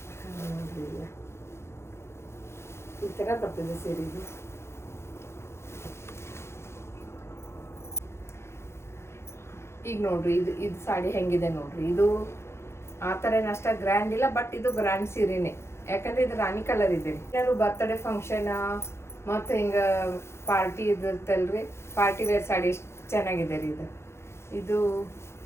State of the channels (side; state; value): right; late; 0.13 ms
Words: ನೋಡ್ರಿ. ಇಲ್ಲ ಈ ಥರ ಬರ್ತದೆ ಸೀರೆ. ಇದು ಈಗ ನೋಡ್ರಿ, ಇದು ಸಾಡಿ ಹೆಂಗಿದೆ ನೋಡ್ರಿ. ಇದು ಆ ಥರ ಏನು ಅಷ್ಟ ಗ್ರ್ಯಾಂಡ್ ಇಲ್ಲ, ಬಟ್ ಇದು ಗ್ರ್ಯಾಂಡ್ ಸೀರೆನೇ. ಯಾಕಂದ್ರೆ ಇದು ರಾಣಿ ಕಲರ್ ಇದೆ. ಏನಾದ್ರು ಬರ್ತ್ಡೇ ಫಂಕ್ಷನ್ ಮತ್ತು ಹಿಂಗೆ ಪಾರ್ಟಿ ಇದಿರ್ತಲ್ರಿ, ಪಾರ್ಟಿ ವೇರ್ ಸಾಡಿ ಎಷ್ಟು ಚೆನ್ನಾಗಿದೆ ರೀ ಇದು. ಇದು